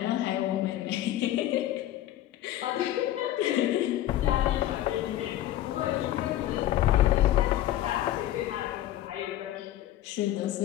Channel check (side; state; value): right; quieter; 13.5 dB